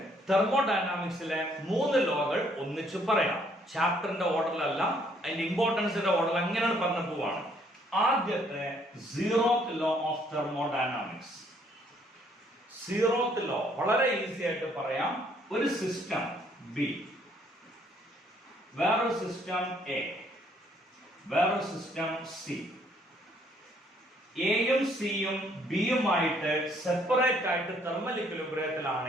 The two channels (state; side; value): normal; both; correlation 0.66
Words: തെർമോഡൈനാമിക്സിലെ 3 ലോകൾ ഒന്നിച്ച് പറയാം. ചാപ്റ്ററിന്റെ ഓർഡറിലല്ല, അതിന്റെ ഇമ്പോർട്ടൻസിന്റെ ഓർഡർ എങ്ങനെയാണ് പറഞ്ഞു പോവാണ്. ആദ്യത്തെ zeroth law of thermodynamics. Zeroth law വളരെ ഈസി ആയിട്ട് പറയാം. ഒരു സിസ്റ്റം ബി, വേറൊരു സിസ്റ്റം എ, വേറൊരു സിസ്റ്റം സി. എയും സിയും ബിയുമായിട്ട് സെപ്പറേറ്റ് ആയിട്ട് തെർമൽ